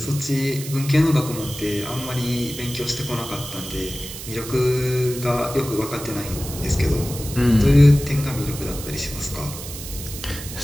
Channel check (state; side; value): noise; right; hiss, 11 dB below the sound